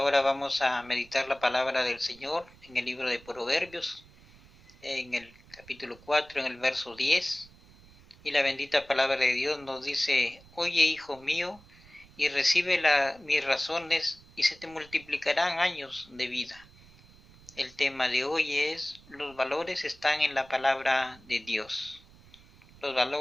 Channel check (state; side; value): noise; right; rumble, 25 dB below the sound